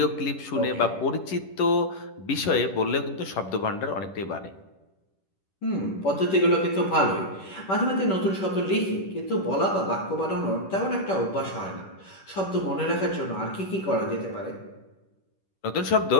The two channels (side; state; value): right; late; 10 ms